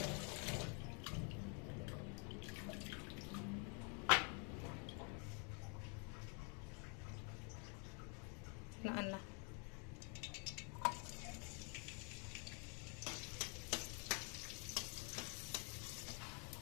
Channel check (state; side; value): quieter; right; 37.6 dB